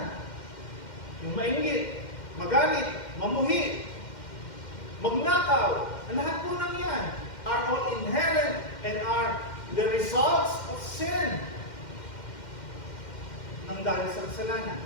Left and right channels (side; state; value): right; late; 2.1 ms